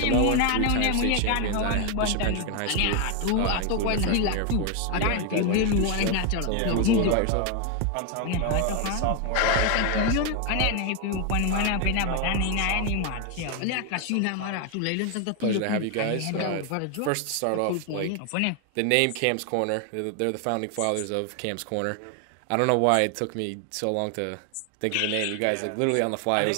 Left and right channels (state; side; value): different; both; correlation 0.01